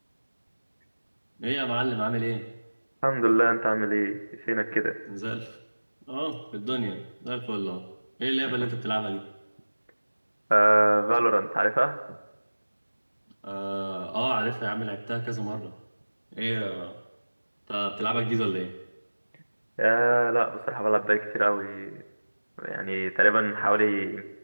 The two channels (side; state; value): both; inverted; correlation -1.00